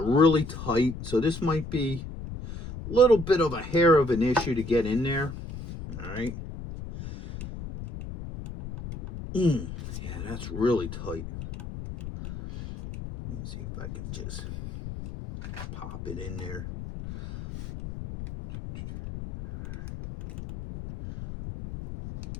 really tight, so this might be a little bit of a hair of an issue to get in there. All right. Yeah, that's really tight. Let me see if I can just pop it in there.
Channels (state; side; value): noise; left; rumble, 9 dB below the sound